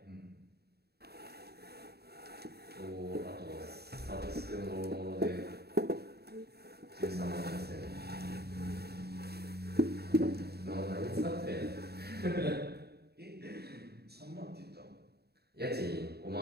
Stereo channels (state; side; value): late; left; 0.47 ms